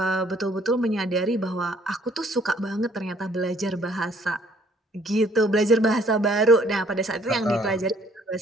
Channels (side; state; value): both; normal; correlation 0.61